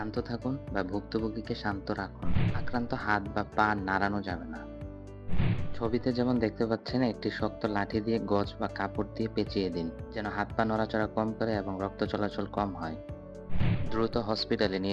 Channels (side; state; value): both; identical; correlation 1.00